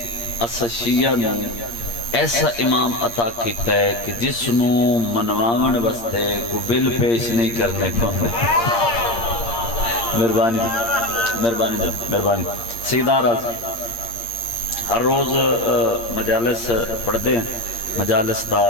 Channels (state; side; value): late; right; 8.6 ms